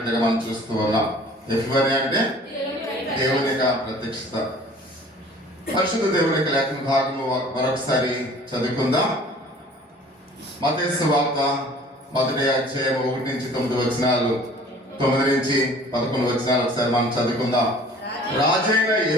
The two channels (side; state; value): both; normal; correlation 0.49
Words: మనం చూస్తూ ఉన్నాం. ఎఫిఫనీ అంటే దేవుని యొక్క ప్రత్యక్షత. పరిశుద్ధ దేవుని యొక్క లేఖన భాగము మరొకసారి చదువుకుందాం. మత్తయి సువార్త మొదటి అధ్యాయం 1 నుంచి 9 వచనాలు, 9 నుంచి 11 వచనాలు ఒకసారి మనం చదువుకుందాం. రాజైన